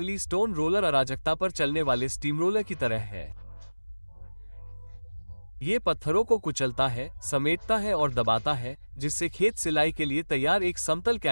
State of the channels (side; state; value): both; inverted; correlation -1.00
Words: स्टोन रोलर अराजकता पर चलने वाले स्टीम रोलर की तरह है। ये पत्थरों को कुचलता है, समेटता है और दबाता है, जिससे खेत सिलाई के लिए तैयार एक समतल